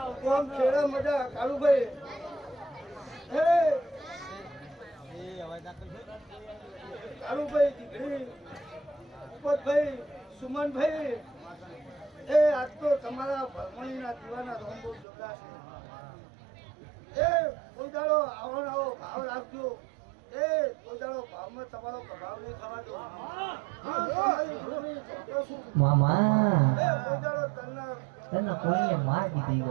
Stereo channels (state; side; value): drops out; left; at 15.1 s